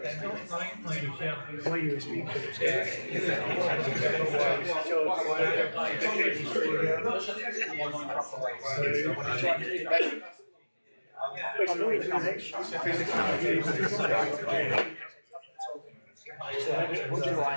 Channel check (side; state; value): both; inverted; correlation -1.00